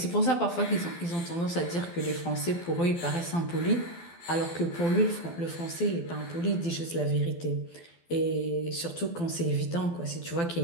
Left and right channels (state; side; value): late; right; 12 ms